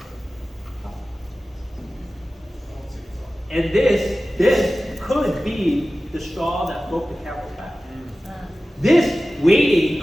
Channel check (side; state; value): both; normal; correlation 0.96